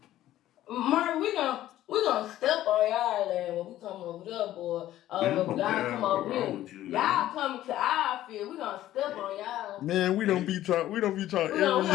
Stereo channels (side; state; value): right; quieter; 13.7 dB